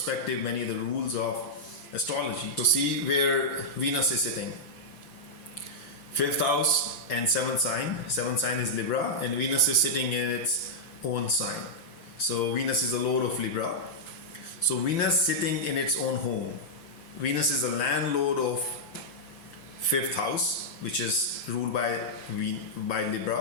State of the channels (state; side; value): late; right; 5.9 ms